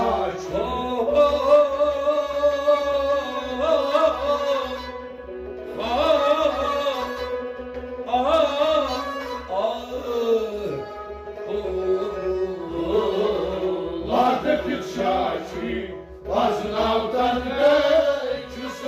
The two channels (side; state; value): both; identical; correlation 1.00